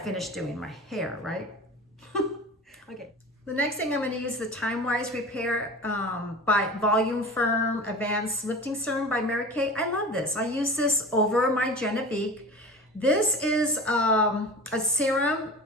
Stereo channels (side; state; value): both; normal; correlation 0.35